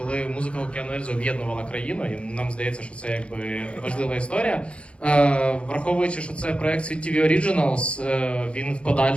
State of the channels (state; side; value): late; right; 0.059 ms